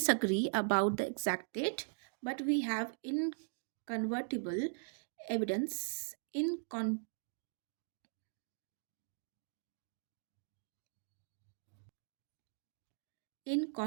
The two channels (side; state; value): left; silent; digital silence